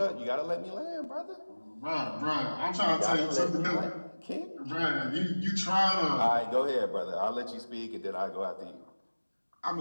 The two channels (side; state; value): both; inverted; correlation -1.00